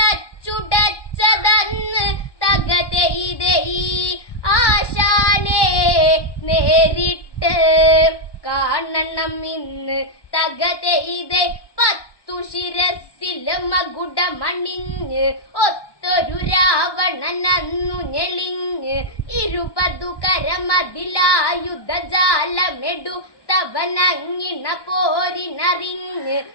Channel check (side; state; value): right; late; 1.1 ms